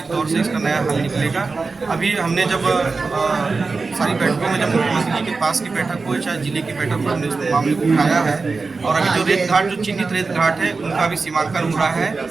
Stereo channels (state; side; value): quieter; left; 4.1 dB